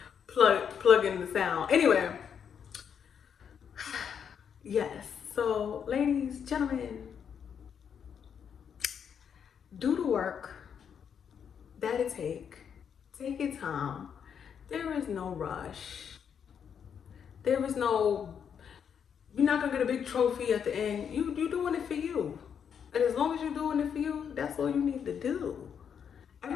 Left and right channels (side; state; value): right; quieter; 7.6 dB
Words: plug in the sound. Anyway, yes. So, ladies, gentlemen, do the work that it take. Take your time. There is no rush. There is no. You're not gonna get a big trophy at the end. You doing it for you, and as long as you're doing it for you, that's all you need to do.